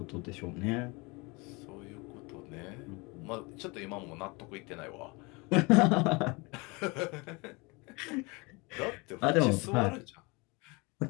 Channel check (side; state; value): right; quieter; 27.1 dB